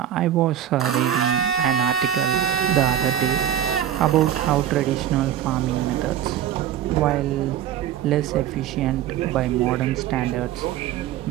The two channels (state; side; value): quieter; left; 10.5 dB